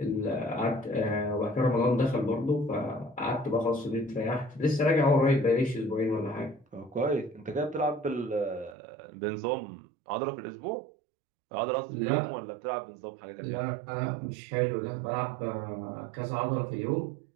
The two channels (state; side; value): drops out; left; at 8.8 s